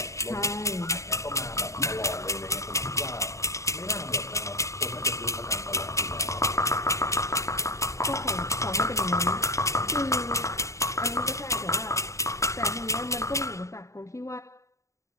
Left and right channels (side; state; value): right; late; 0.15 ms